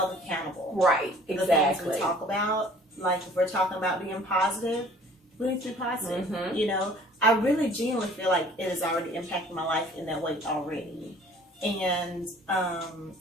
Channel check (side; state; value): both; normal; correlation 0.52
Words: accountable. Right. Exactly. The things we talk about, like if we're talking about being positive, we need to be positive. I really genuinely feel like it has already impacted my life in that way already. And